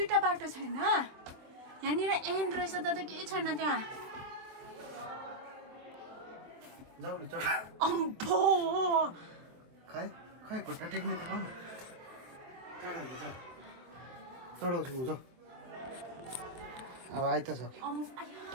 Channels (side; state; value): left; late; 23 ms